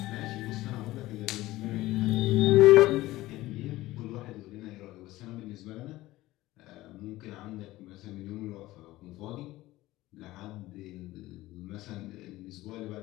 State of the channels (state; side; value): quieter; right; 17.3 dB